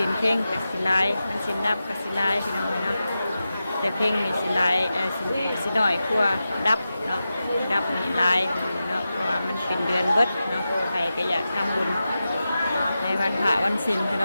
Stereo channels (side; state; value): both; inverted; correlation -0.92